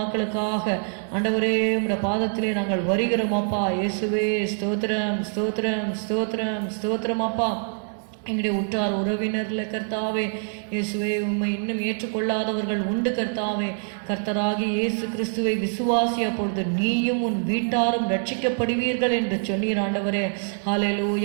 ஆண்டவரே உம்முடைய பாதத்திலே நாங்கள் வருகிறோம் அப்பா. இயேசுவே ஸ்தோத்திரம் ஸ்தோத்திரம் ஸ்தோத்திரம் ஸ்தோத்திரம் அப்பா. எங்களுடைய உற்றார் உறவினர்ல கர்த்தாவே இயேசுவே உம்மை இன்னும் ஏற்றுக்கொள்ளாதவர்கள் உண்டு கர்த்தாவே. கர்த்தராகி இயேசு கிறிஸ்துவை விசுவாசி, அப்பொழுது நீயும் உன் வீட்டாரும் ரட்சிக்கப்படுவீர்கள் என்று சொன்னீர் ஆண்டவரே.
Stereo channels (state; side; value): silent; left; 60 dB below the other